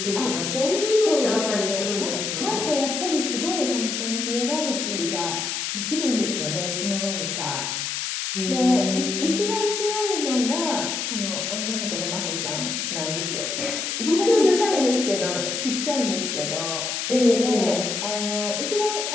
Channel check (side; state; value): left; noise; hiss, 2 dB below the sound